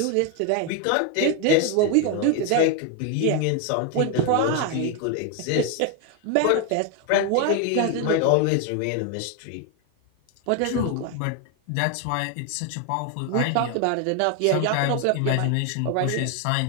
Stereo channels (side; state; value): both; different; correlation 0.01